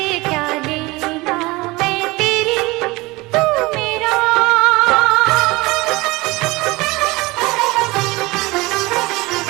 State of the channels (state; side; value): quieter; left; 22.3 dB